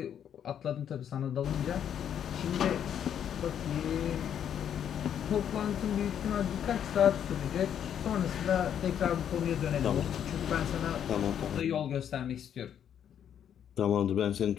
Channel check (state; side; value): quieter; right; 9.2 dB